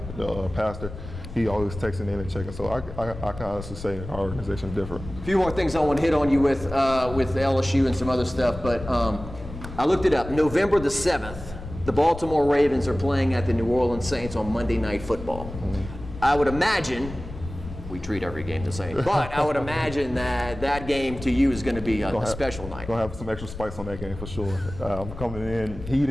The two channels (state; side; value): noise; left; rumble, 11 dB below the sound